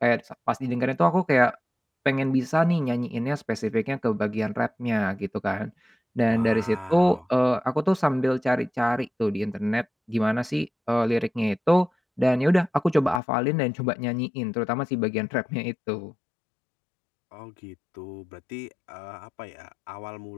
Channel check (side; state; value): right; drops out; at 13.2 s